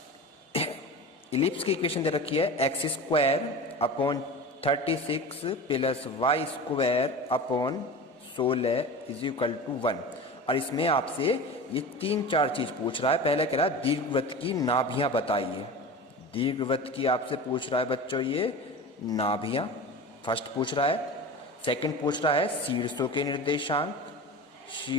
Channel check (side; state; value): both; normal; correlation 0.32